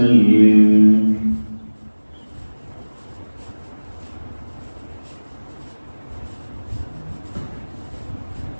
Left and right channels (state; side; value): inverted; both; correlation -1.00